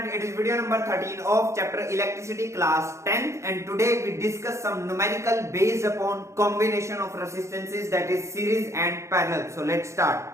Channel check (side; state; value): left; late; 0.14 ms